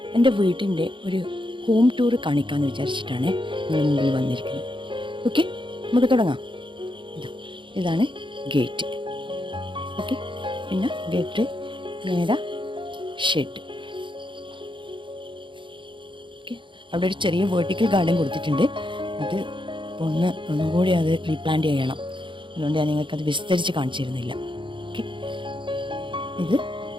എൻ്റെ വീട്ടിൻ്റെ ഒരു ഹോം ടൂർ കാണിക്കാമെന്ന് വിചാരിച്ചിട്ടാണ് നിങ്ങളുടെ മുമ്പിൽ വന്നിരിക്കുന്നത്. ഓക്കെ, നമുക്ക് തുടങ്ങാം. ഇതാണ് ഗേറ്റ്. ഓക്കെ, പിന്നെ ഗേറ്റ് നേരെ ഷെഡ്. ഓക്കെ, അവിടെ ഒരു ചെറിയ വേർട്ടിക്കൽ ഗാർഡൻ കൊടുത്തിട്ടുണ്ട്. അത് ഒന്നും കൂടി അത് റീപ്ലാന്റ് ചെയ്യണം. അതുകൊണ്ട് ഞാൻ നിങ്ങൾക്കത് വിസ്തരിച്ച് കാണിച്ചിരുന്നില്ല. ഓക്കെ, ഇത്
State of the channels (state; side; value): late; left; 0.24 ms